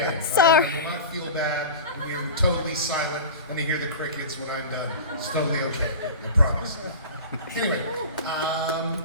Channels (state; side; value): inverted; both; correlation -0.32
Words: end. Sorry. You will not feel bad when you're totally silent and you hear the crickets when I'm done. It's totally okay. I promise. Anyway,